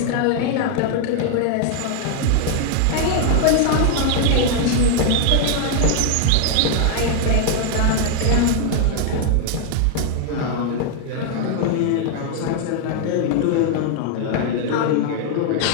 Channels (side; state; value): both; different; correlation 0.00